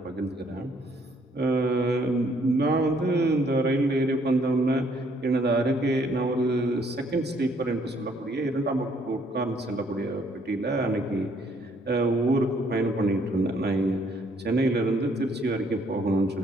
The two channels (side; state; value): both; normal; correlation 0.66